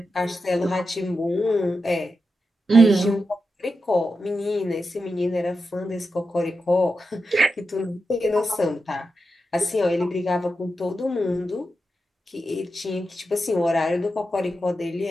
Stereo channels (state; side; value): normal; both; correlation 0.89